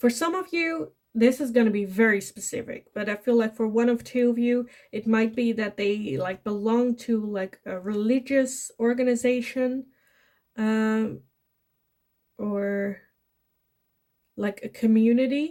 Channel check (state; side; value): identical; both; correlation 1.00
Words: some of you, this is going to be very specific, but I feel like for one of two of you, it might be that they like belong to like a religious organization, or like a